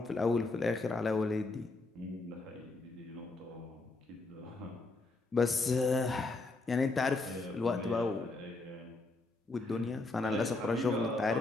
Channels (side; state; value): right; quieter; 3.3 dB